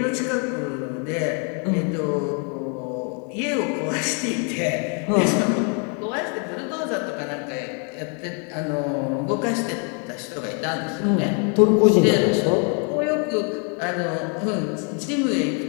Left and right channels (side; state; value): right; quieter; 38.6 dB